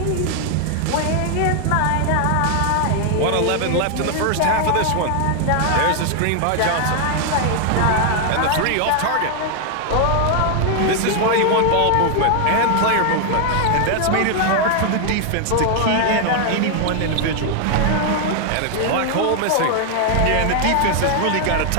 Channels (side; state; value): both; different; correlation 0.00